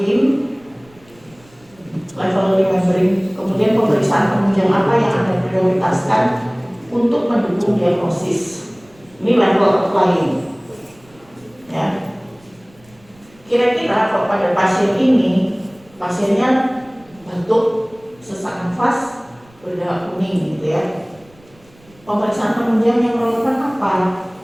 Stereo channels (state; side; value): noise; right; rumble, 29 dB below the sound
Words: Level remembering, kemudian pemeriksaan penunjang apa yang Anda prioritaskan untuk mendukung diagnosis. Ini level applying. Ya. Kira-kira kalau pada pasien ini, pasiennya batuk, sesak nafas, berdarah kuning gitu ya. Pemeriksaan penunjang yang relevan apa?